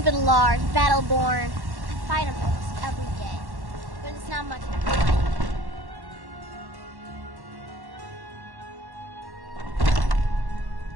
Lars, Battleborn. I fight him almost every day, but it's not much of a fight.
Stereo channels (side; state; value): left; late; 1.1 ms